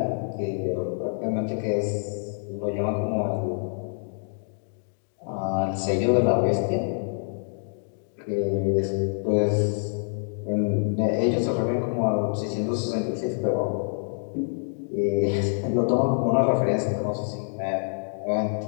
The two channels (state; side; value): silent; right; digital silence